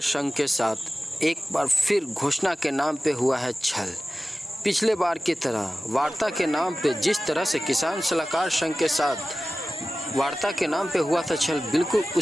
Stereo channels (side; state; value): both; normal; correlation 0.96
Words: संघ के साथ एक बार फिर घोषणा के नाम पे हुआ है छल। पिछले बार की तरह वार्ता के नाम पे जिस तरह से किसान सलाहकार संघ के साथ वार्ता के नाम पे हुआ था छल, बिल्कुल